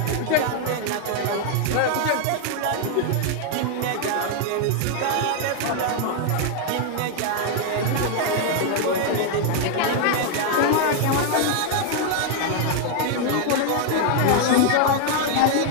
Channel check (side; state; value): both; different; correlation 0.00